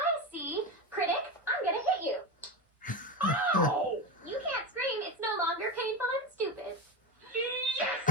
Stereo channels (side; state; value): both; normal; correlation 0.20